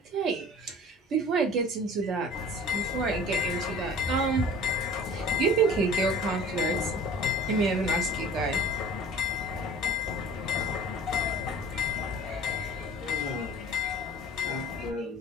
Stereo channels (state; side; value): normal; both; correlation 0.44